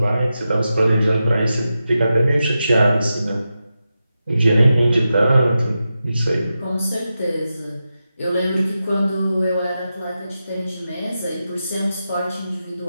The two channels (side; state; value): both; inverted; correlation -0.90